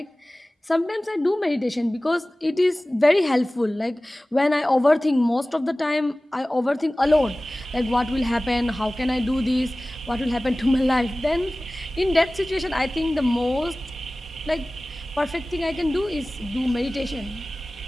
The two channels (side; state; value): both; normal; correlation 0.98